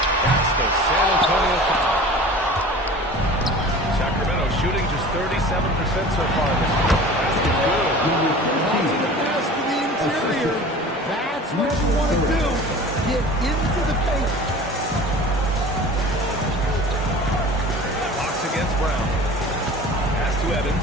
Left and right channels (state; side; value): normal; both; correlation 0.40